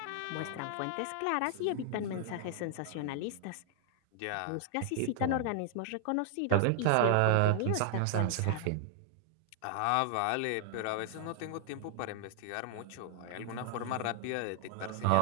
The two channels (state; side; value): different; both; correlation 0.00